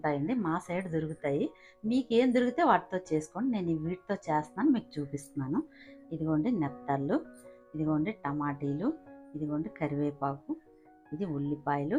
మా సైడ్ దొరుకుతాయి. మీకు ఏం దొరికితే వాటితో చేసుకోండి. నేను వీటితో చేస్తున్నాను, మీకు చూపిస్తున్నాను. ఇదిగోండి నెత్తళ్ళు, ఇదిగోండి టమాటీలు, ఇదిగోండి కరివేపాకు, ఇది ఉల్లిపాయలు,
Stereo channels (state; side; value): identical; both; correlation 1.00